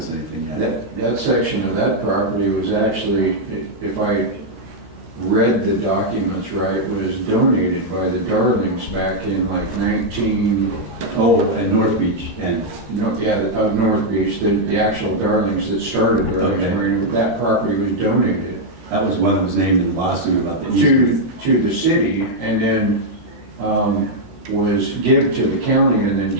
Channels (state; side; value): late; left; 13 ms